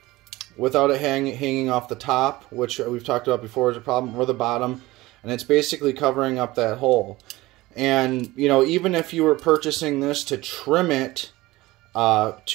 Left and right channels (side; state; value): left; quieter; 19.2 dB